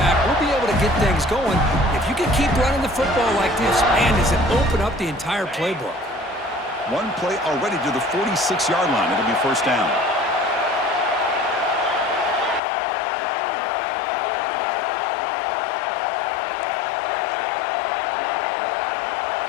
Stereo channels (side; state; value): right; drops out; at 12.6 s